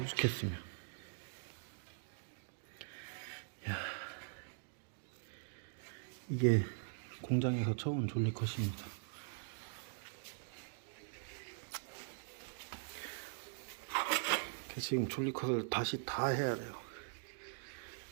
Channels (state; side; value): silent; left; digital silence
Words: 이게 공장에서 쳐온 졸리컷입니다. 지금 졸리컷을 다시 다 해야 돼요.